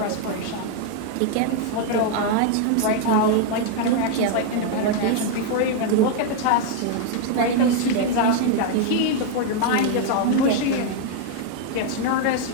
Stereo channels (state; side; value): different; both; correlation 0.00